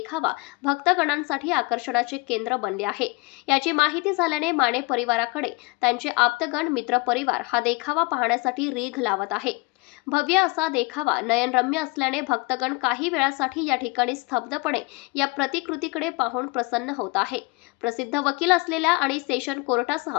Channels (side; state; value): right; quieter; 26.0 dB